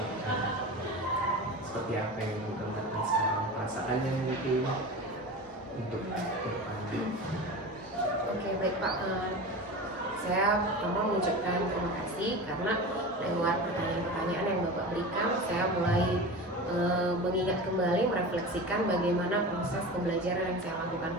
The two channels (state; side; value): normal; both; correlation 0.30